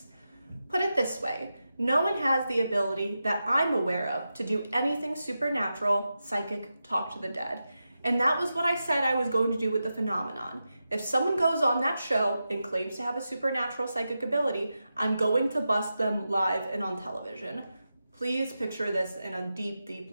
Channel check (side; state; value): both; inverted; correlation -0.90